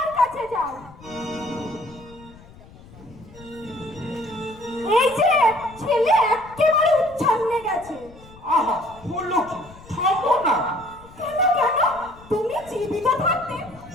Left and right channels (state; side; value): noise; left; rumble, 21 dB below the sound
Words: কাছে যাও। এই যে ছেলে একেবারে উচ্ছন্নে গেছে। আহা হলো কি, থামো না। কেন কেন, তুমি জীবিত থাকতে